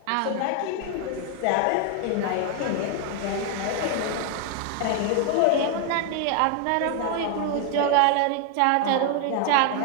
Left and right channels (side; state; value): both; different; correlation 0.00